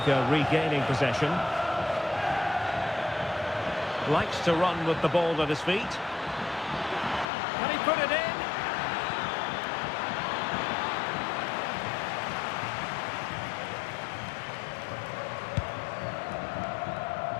regaining possession. Likes to run with the ball at his feet. Can he put it in?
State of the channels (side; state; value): right; drops out; at 7.2 s